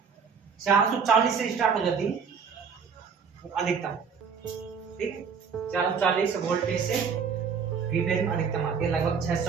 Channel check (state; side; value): quieter; left; 6.2 dB